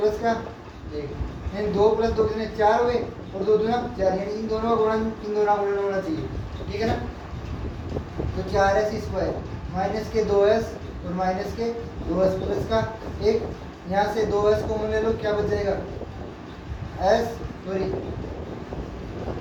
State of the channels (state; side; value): identical; both; correlation 1.00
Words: का 1, यानी 2 प्लस 2 कितने 4 हुए और 2 दूना 4, यानी इन दोनों का गुणन होना चाहिए, ठीक है ना। तो 4s² माइनस के 2s और माइनस के 2s प्लस का 1, यहाँ से 2s को ले लो, क्या बच जाएगा